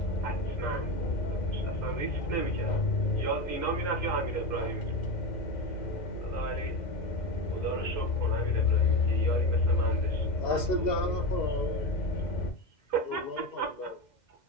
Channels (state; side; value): late; right; 2.1 ms